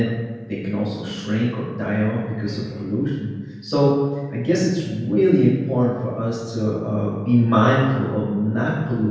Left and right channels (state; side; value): identical; both; correlation 1.00